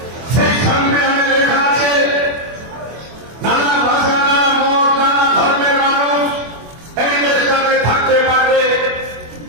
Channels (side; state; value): left; late; 24 ms